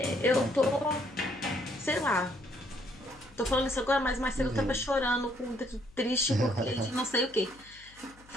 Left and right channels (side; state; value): left; noise; hum, 25 dB below the sound